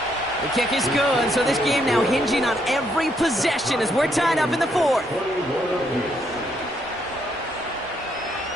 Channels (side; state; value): both; normal; correlation 0.73